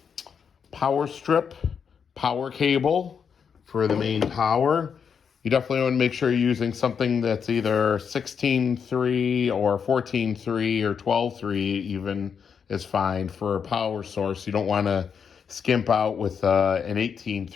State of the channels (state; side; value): quieter; right; 6.8 dB